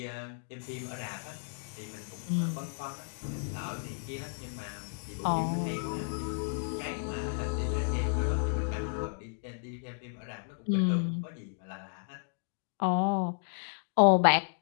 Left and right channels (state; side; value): silent; right; digital silence